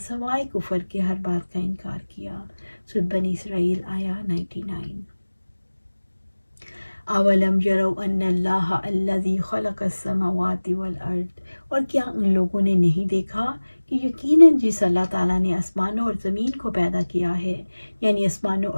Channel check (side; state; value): both; inverted; correlation -1.00